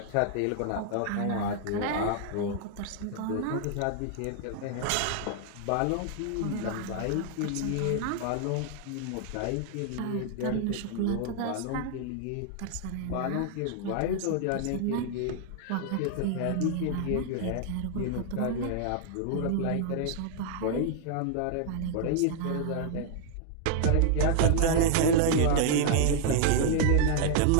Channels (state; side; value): different; both; correlation 0.00